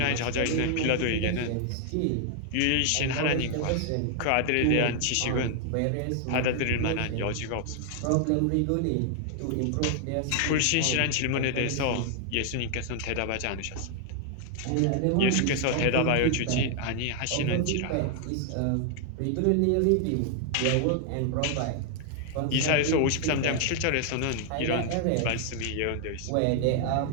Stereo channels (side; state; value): both; different; correlation 0.00